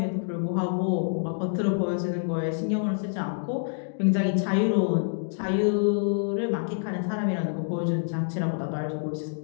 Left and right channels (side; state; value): right; silent; digital silence